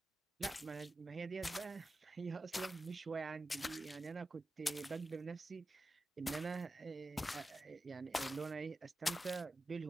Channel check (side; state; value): both; normal; correlation 0.93